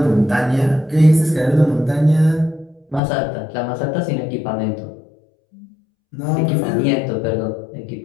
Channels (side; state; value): right; drops out; at 3.0 s